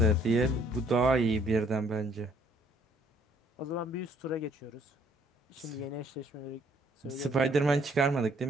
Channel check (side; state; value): both; normal; correlation 0.63